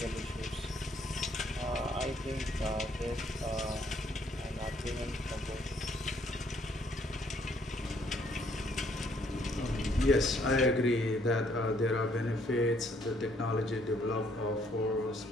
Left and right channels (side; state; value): both; normal; correlation 0.67